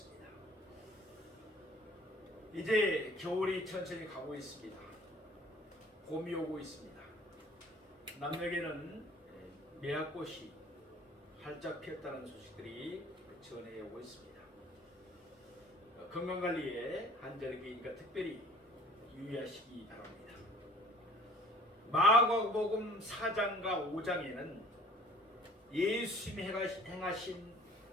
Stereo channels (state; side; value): normal; both; correlation 0.51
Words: 이제 겨울이 천천히 가고 있습니다. 봄이 오고 있습니다. 남녘에는 매화꽃이 활짝 피었다는 소식들이 전해 오고 있습니다. 건강관리에 한절기니까 특별히 유의하시기 바랍니다. 마가복음 4장과 5장에는 예수님이 행하신